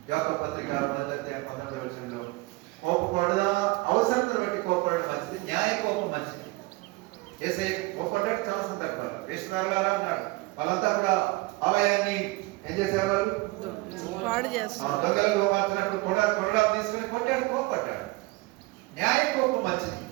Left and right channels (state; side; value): quieter; left; 23.0 dB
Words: యాకోబు పత్రిక 1:19 కోపపడదా, అవసరతను బట్టి కోపడడం మంచిది, న్యాయ కోపం మంచిది. ఏసే కోపడ్డాడు చాలా సందర్భాలు. వేషధారులారా అన్నాడు, వాళ్ళంతా కూడా ఆలయాన్ని ఏం చేసేవారు, పాడు చేస్తారు. దొంగలు మార్చినప్పుడు కొరడా తీసుకుని కొట్టాడు, కోపడ్డాడు. న్యాయ కోపం మంచిది,